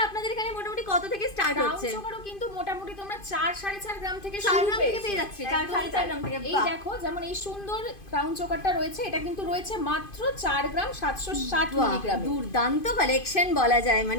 আপনাদের এখানে মোটামুটি কত থেকে স্টার্ট হচ্ছে? ক্রাউন চোকারও কিন্তু মোটামুটি তোমরা 4-4.5 গ্রাম থেকে 4 গ্রাম থেকে পেয়ে যাচ্ছে। 4-4.5 গ্রাম থেকে। এই দেখো, যেমন এই সুন্দর ক্রাউন চোকারটা রয়েছে, এটা কিন্তু রয়েছে মাত্র 4 গ্রাম 760 মিলিগ্রাম। দুর্দান্ত কালেকশন বলা যায়,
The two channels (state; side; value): late; right; 2.5 ms